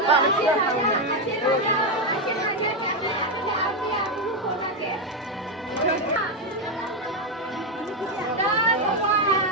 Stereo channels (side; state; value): both; normal; correlation 0.06